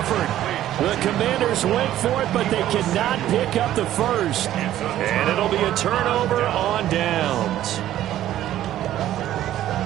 The Commanders went for it, but they cannot pick up the first. And it'll be a turnover on downs.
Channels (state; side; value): quieter; left; 12.9 dB